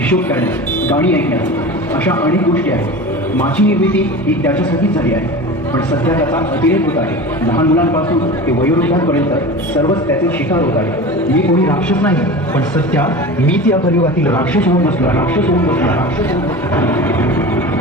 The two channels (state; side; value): normal; both; correlation 0.33